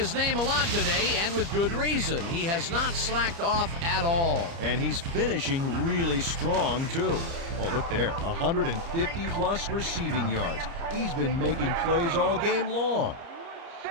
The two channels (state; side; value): late; left; 30 ms